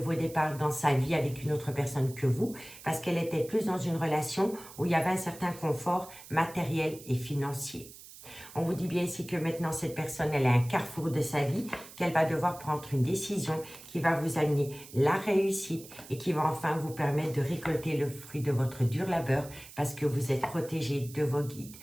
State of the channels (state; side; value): noise; right; hiss, 17 dB below the sound